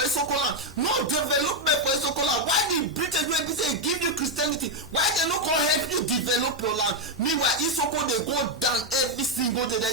land, no development for Isoko land. Why the British wey be say give you Christianity, why they no come help you develop your land? Meanwhile Isoko dey go down every single day, they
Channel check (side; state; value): both; normal; correlation 0.04